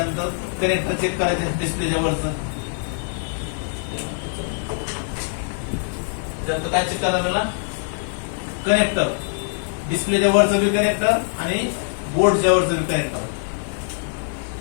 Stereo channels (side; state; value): right; silent; 59 dB below the other